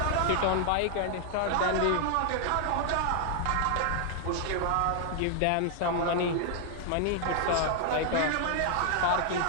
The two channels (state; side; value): different; both; correlation 0.00